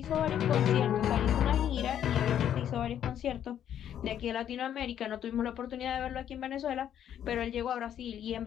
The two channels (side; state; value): right; quieter; 10.0 dB